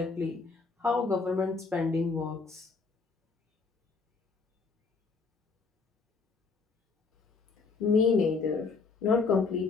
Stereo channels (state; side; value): quieter; right; 4.5 dB